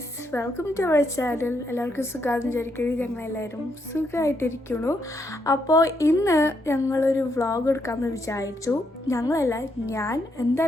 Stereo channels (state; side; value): normal; both; correlation 0.77